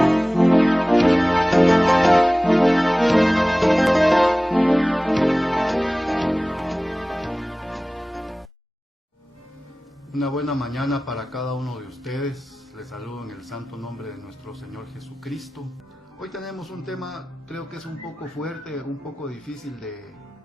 Una buena mañana para cada uno de ustedes. Les saludo en el santo nombre de nuestro Señor Jesucristo. Hoy tenemos un tema, creo que es un poco fuerte, un poco difícil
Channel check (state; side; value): normal; both; correlation 0.97